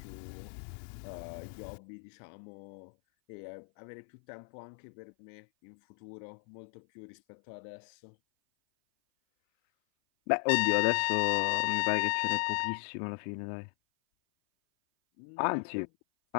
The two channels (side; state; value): right; silent; 54 dB below the other